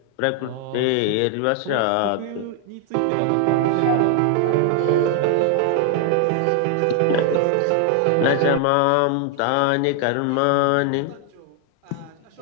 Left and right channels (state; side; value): different; both; correlation 0.00